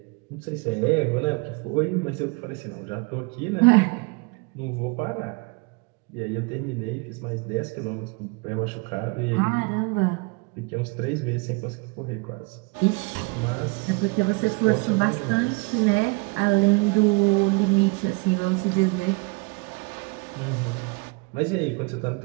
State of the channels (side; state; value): left; quieter; 30.1 dB